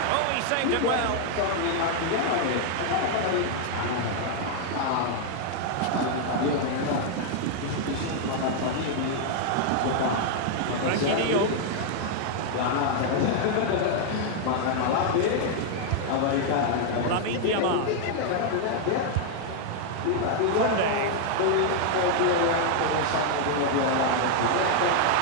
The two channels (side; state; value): both; different; correlation 0.00